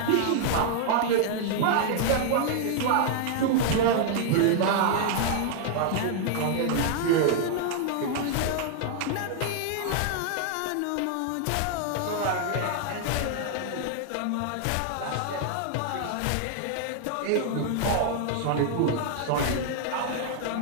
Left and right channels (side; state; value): both; different; correlation 0.00